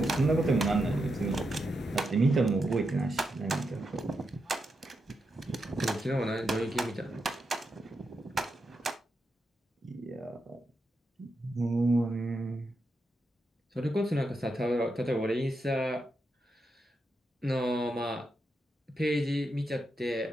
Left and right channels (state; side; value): normal; both; correlation 0.85